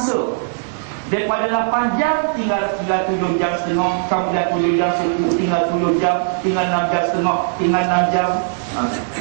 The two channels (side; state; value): left; silent; digital silence